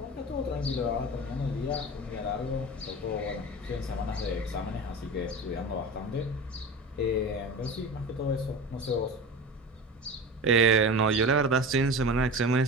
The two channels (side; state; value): both; normal; correlation 0.31